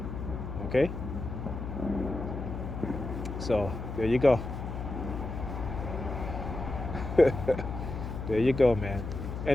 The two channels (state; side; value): noise; left; hum, 6 dB below the sound